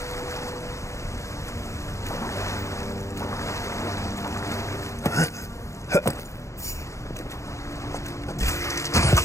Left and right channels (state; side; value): late; right; 0.15 ms